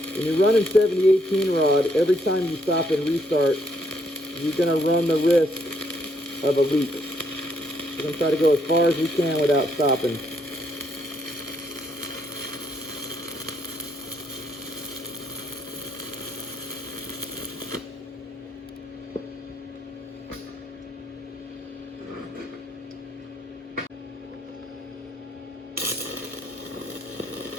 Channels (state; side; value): normal; both; correlation 0.72